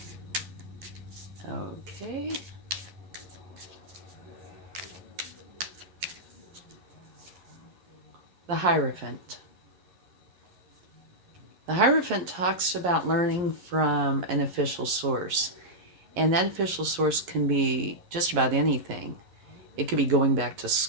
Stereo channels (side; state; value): left; late; 11 ms